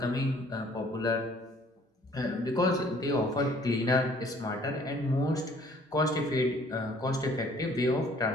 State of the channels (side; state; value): both; normal; correlation 0.58